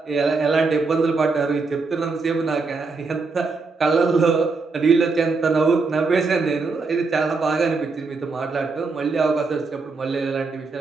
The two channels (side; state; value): left; quieter; 4.1 dB